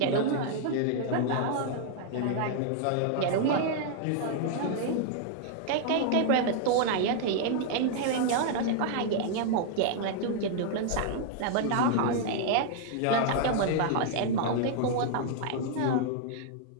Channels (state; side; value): different; both; correlation 0.00